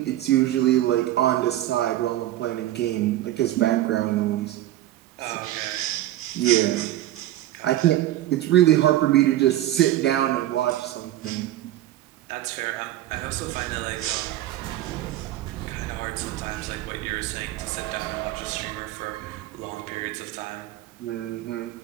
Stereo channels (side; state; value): left; quieter; 14.0 dB